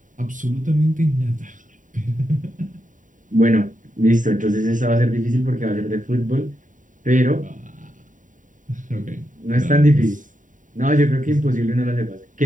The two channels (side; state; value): left; late; 0.38 ms